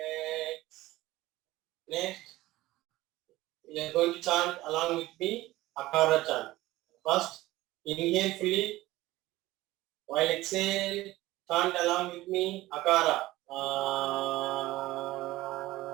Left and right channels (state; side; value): quieter; left; 17.5 dB